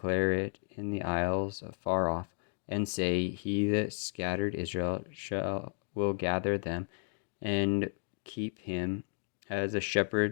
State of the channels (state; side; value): silent; right; digital silence